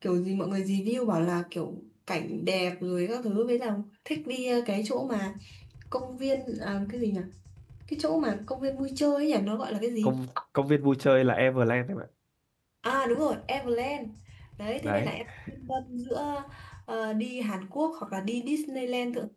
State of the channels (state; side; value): identical; both; correlation 1.00